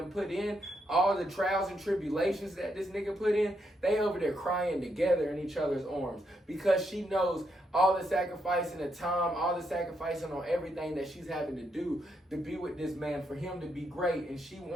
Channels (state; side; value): normal; both; correlation 0.79